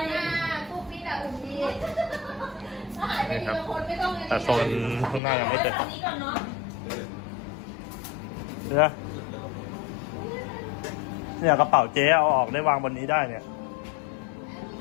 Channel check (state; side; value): drops out; right; at 5.2 s